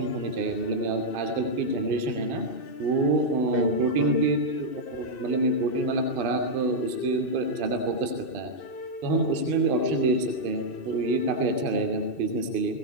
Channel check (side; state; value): right; late; 2.6 ms